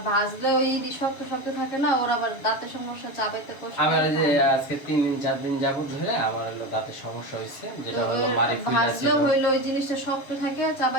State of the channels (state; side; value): late; right; 7.1 ms